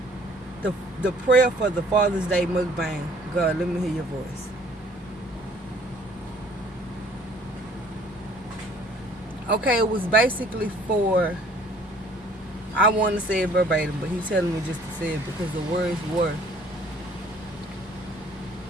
The prayer for the Father's Day mukbang. God, let me hear your voice. Okay, it was basically for, I want to say it verbatim, but he's telling me just to say it because the words were,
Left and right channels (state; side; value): normal; both; correlation 0.56